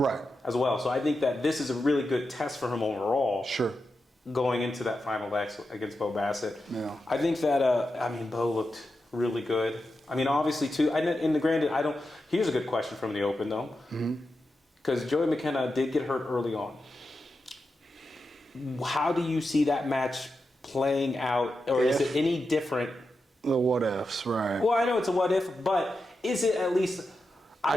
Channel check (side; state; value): both; normal; correlation 0.89